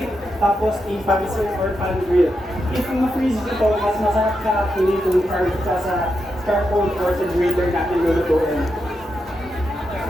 tapos i-pan-sear or pan-grill. If ma-freeze ito, mas masarap ka actually kung charge ka sa carbon or sa grater natin lulutuin.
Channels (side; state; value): both; normal; correlation 0.85